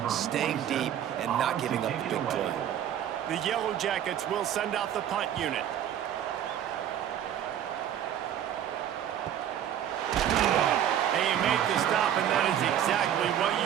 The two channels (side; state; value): left; quieter; 10.2 dB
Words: staying deep, and not giving up the big play. The Yellow Jackets will send out the punt unit. And you make the stop, and that is exactly what